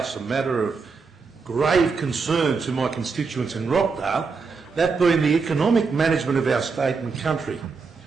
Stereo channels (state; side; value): quieter; left; 4.8 dB